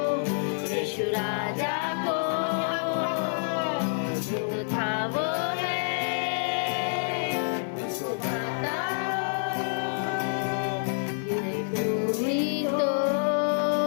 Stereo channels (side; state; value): right; silent; 60 dB below the other